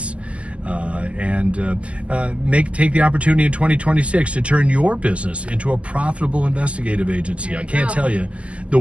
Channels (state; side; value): late; left; 0.060 ms